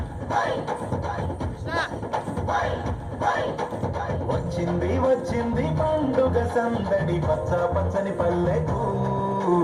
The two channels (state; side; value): identical; both; correlation 1.00